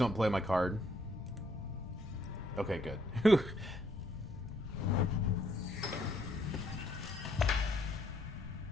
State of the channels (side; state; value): both; normal; correlation 0.69